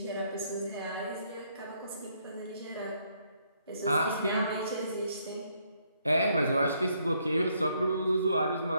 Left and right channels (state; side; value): inverted; both; correlation -0.71